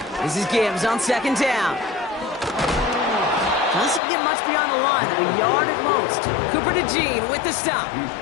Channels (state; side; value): drops out; right; at 4.0 s